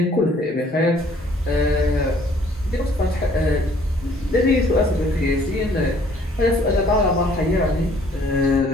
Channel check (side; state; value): both; normal; correlation 0.59